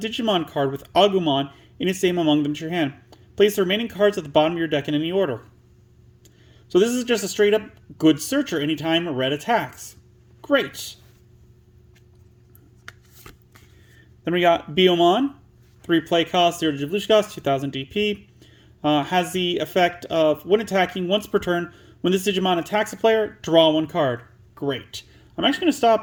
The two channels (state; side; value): identical; both; correlation 1.00